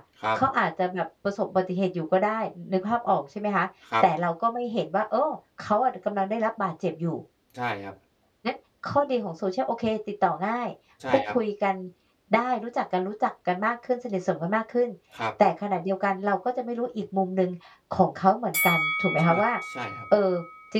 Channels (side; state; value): both; identical; correlation 1.00